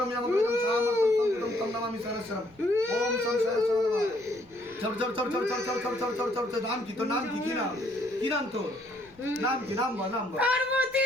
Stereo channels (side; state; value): left; noise; rumble, 29 dB below the sound